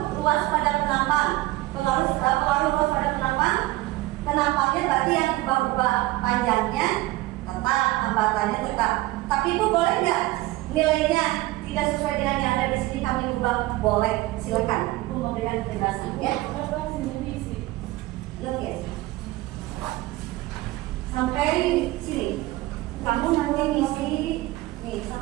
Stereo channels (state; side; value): quieter; left; 18.6 dB